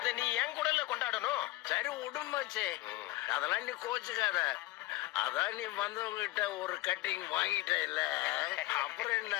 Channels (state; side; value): quieter; right; 18.2 dB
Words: நீ என் கூடல கொண்டாடணும். சரி விடும் மச்சி, அதெல்லாம் நீ கோச்சுக்காத. அதான் நீ வந்தவங்கிட்ட ஒரு கட்டிங் வாங்கிட்ட இல்ல, அப்புறம் என்ன?